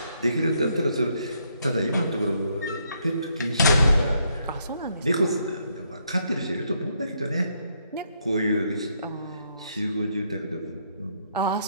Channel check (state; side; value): inverted; both; correlation -0.74